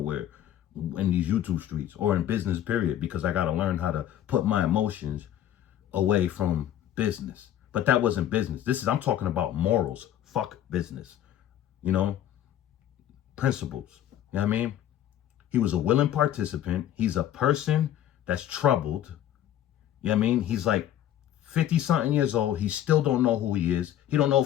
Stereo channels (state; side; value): quieter; right; 11.5 dB